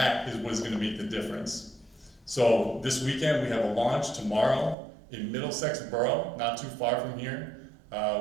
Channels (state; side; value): drops out; left; at 4.8 s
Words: is what is going to make the difference. So this weekend we have a launch tomorrow in Middlesex Borough, not too far from here,